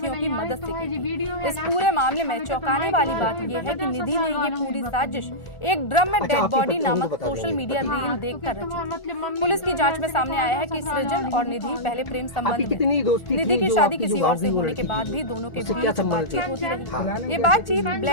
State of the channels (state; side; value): late; right; 1.4 ms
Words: की मदद से की थी। इस पूरे मामले में चौंकाने वाली बात यह है कि निधि ने ये पूरी साजिश एक ड्रम में डेड बॉडी नामक सोशल मीडिया रील देखकर रची थी। पुलिस की जांच में सामने आया है कि सृजन और निधि पहले प्रेम संबंध में निधि की शादी किसी और से होने के बाद भी दोनों के बीच बातचीत होती रही। ये बातचीत